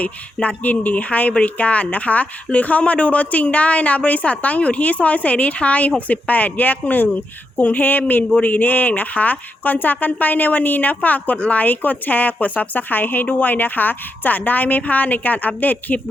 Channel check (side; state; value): both; normal; correlation 0.84